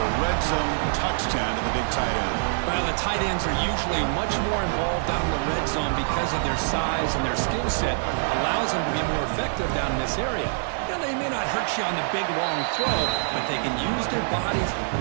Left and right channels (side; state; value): left; silent; digital silence